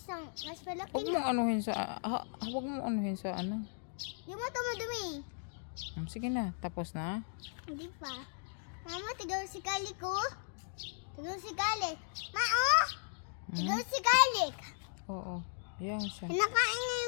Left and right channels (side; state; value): right; silent; digital silence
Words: mas malaki Huwag na. mong anuhin sa... Huwag mong anuhin sa ano. Di mo tumadumi. Sige na. Tapos na. Hindi pa. Mama, tignan si Kalik ko. Tignan si Kalik. Tignan si Kalik. Oo. Yan siya. Kinakain niya